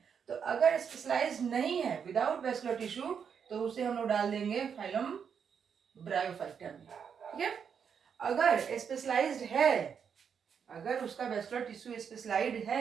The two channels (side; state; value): left; quieter; 7.1 dB